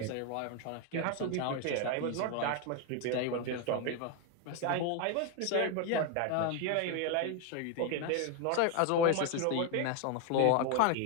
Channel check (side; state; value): both; different; correlation 0.01